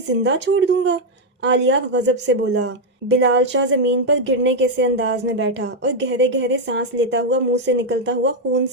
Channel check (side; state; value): both; normal; correlation 0.02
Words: छोड़ दूंगा। आलियार गजब से बोला। बिलाल शाह जमीन पर गिरने के से अंदाज में बैठा और गहरे गहरे सांस लेता हुआ मुंह से निकलता हुआ खून